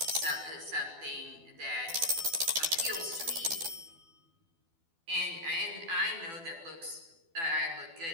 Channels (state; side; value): late; left; 12 ms